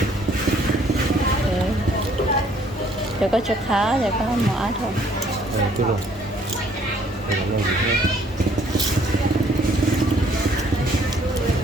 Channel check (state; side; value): normal; both; correlation 0.62